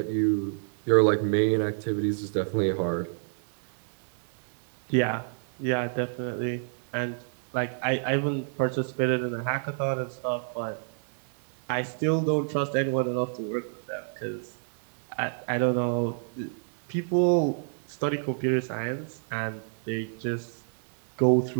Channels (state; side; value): silent; left; 59 dB below the other